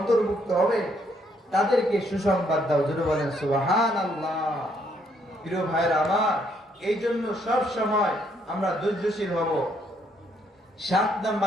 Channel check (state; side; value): normal; both; correlation 0.70